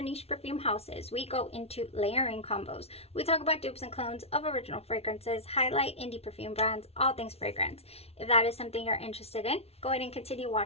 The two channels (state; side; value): late; right; 0.30 ms